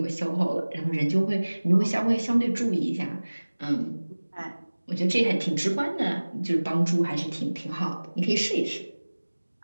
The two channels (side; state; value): both; inverted; correlation -1.00